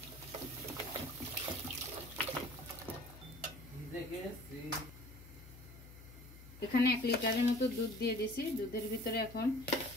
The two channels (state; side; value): noise; left; hum, 17 dB below the sound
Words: এখানে 1 লিটারের মতো দুধ দিয়ে দিয়েছি। দুধের ভিতরে এখন